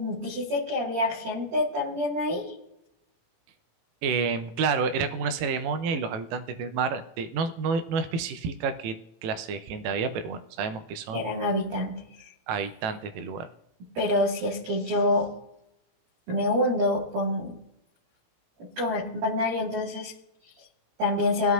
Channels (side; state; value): left; late; 18 ms